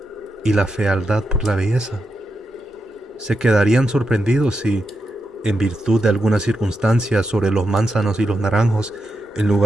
y la fealdad por la belleza. Se quedarían sorprendidos si, en virtud de algunas circunstancias sobre los manzanos y los naranjos, en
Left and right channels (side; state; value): both; normal; correlation 0.86